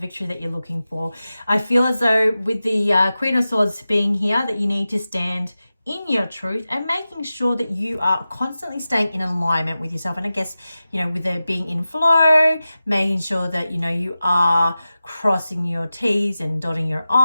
that you're looking for. I feel as though with the Queen of Swords being here, that you need to stand in your truth and making sure that you are constantly staying in alignment with yourself. And I guess, with it being in flow, making sure that, you are crossing your T's and dotting your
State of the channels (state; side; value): inverted; both; correlation -0.94